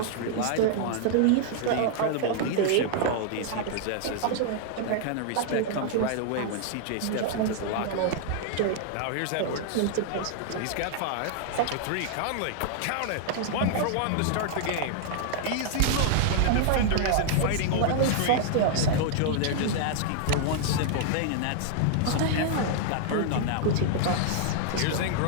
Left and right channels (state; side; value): different; both; correlation -0.01